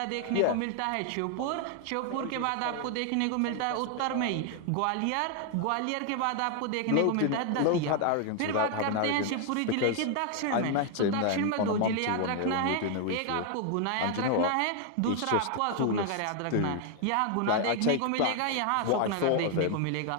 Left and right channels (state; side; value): different; both; correlation 0.00